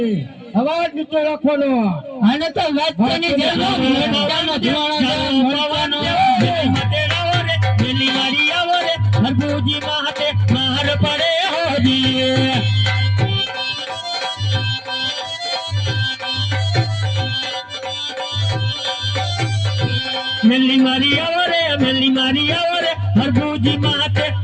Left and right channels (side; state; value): both; identical; correlation 1.00